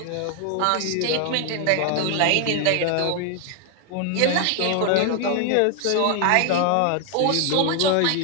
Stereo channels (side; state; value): both; different; correlation 0.01